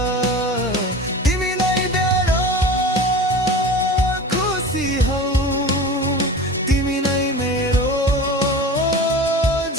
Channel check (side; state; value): both; normal; correlation 0.35